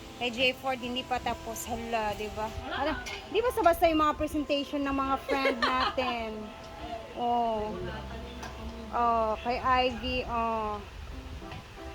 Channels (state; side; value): identical; both; correlation 1.00